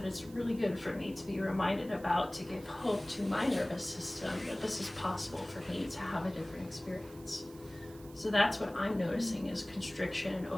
it's really good for me to be reminded about, to give hope to my nervous system that this is possible for me to have a different experience. So that's what I'm noticing is constriction and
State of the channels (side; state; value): right; noise; hiss, 21 dB below the sound